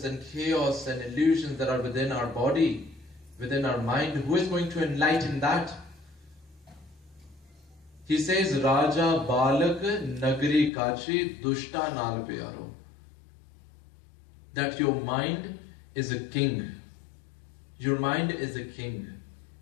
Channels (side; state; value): right; drops out; at 10.7 s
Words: and chaos and illusions that are within our body, within our mind? Who is going to enlighten that?" He says, "Raja Balak Nagri Kachi Dushta Nal Piyaro." That your mind is a king. Your mind is a king.